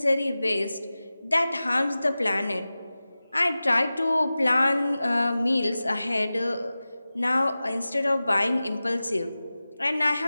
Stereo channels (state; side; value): inverted; both; correlation -0.96